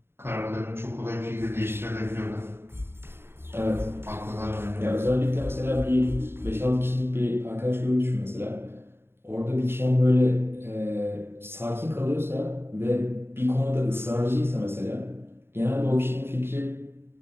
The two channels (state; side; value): late; left; 0.11 ms